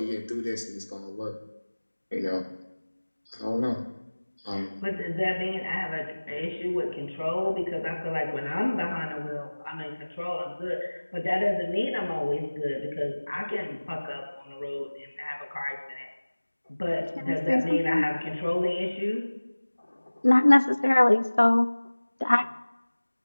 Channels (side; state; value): both; inverted; correlation -1.00